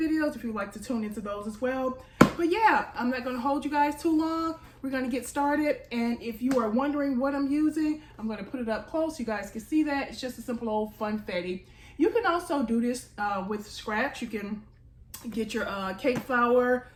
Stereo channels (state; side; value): identical; both; correlation 1.00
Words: if you'd like to tune into those as well. But yeah, I'm not going to hold you guys too long. We're going to get started, and if you are wondering what I'm using, I'm going to put it up close so you guys can see that. It's just a simple old funfetti. You can also do this with scratch. You can get your cake flour,